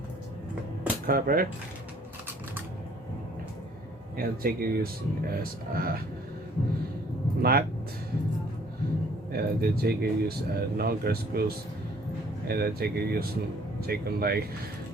cover, and take it use as a nut, and then take it use longer screws, and then take it use take them like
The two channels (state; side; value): normal; both; correlation 0.58